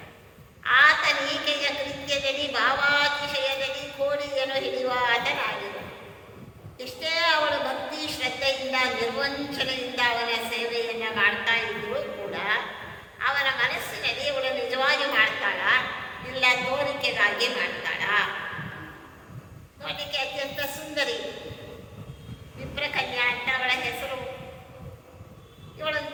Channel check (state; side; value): identical; both; correlation 1.00